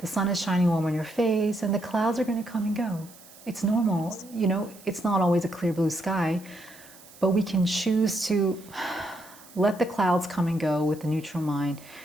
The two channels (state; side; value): noise; right; hiss, 22 dB below the sound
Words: sun is shining warm on your face and the clouds are going to come and go. It's normal. You know, it's not always a clear blue sky, but we can choose to let the clouds come and go with the neutral mind